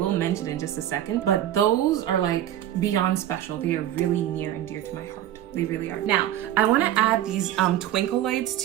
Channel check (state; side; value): quieter; left; 12.2 dB